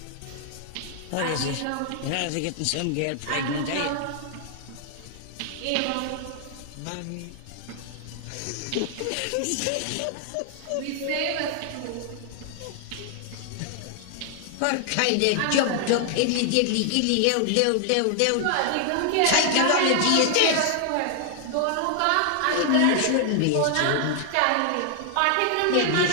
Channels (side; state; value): both; different; correlation 0.00